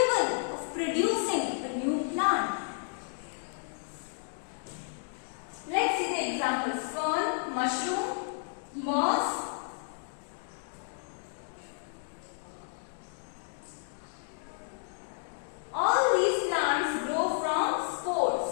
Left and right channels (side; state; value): right; silent; digital silence